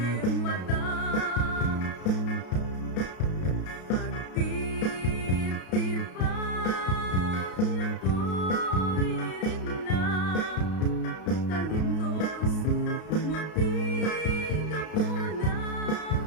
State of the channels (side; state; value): right; late; 33 ms